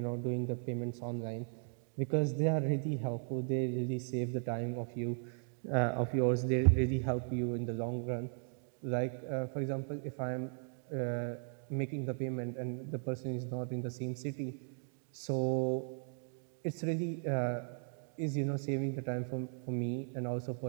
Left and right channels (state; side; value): silent; left; 53 dB below the other